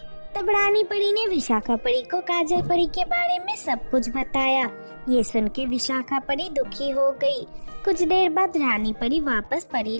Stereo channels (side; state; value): both; inverted; correlation -1.00